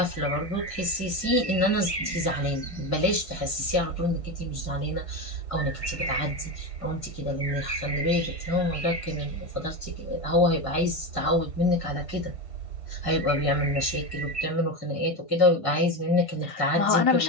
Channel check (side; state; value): right; late; 1.5 ms